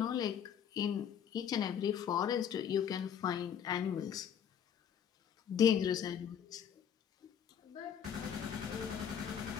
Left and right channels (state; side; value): quieter; right; 8.5 dB